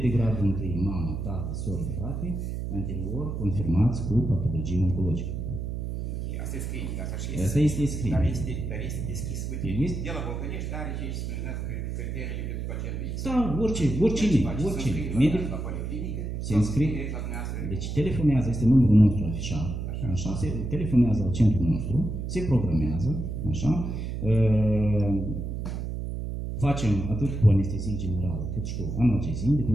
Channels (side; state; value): right; noise; hum, 4 dB below the sound